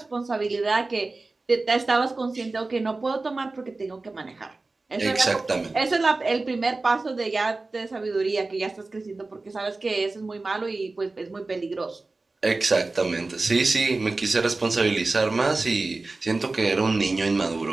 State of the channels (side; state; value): left; quieter; 3.4 dB